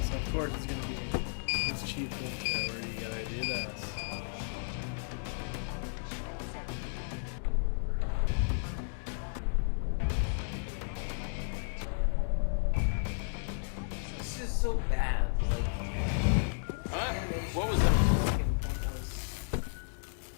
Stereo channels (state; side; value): silent; right; digital silence